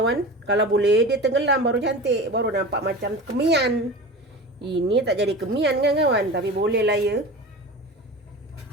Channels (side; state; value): both; normal; correlation 0.32